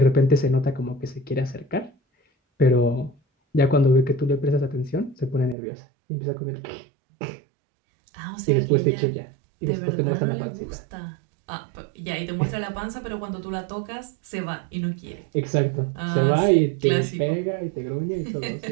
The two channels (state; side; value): drops out; left; at 5.6 s